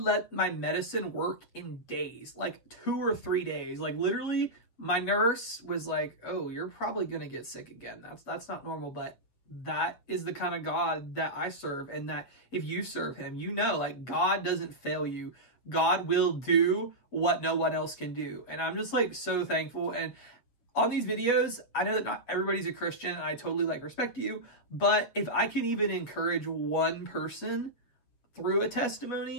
my medicine work in days, 2 or 3 days. Literally, my nurse was oh, you're probably going to get sick again. That's not normal, but that is the kind of God that I serve. And that if you serve him, you know, God doesn't fail you. God will do what no one else can do. And I'm just so thankful. And on these videos, I know that not everybody's a Christian, and I totally respect you. But if I can even encourage one person through a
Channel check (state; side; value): late; right; 7.9 ms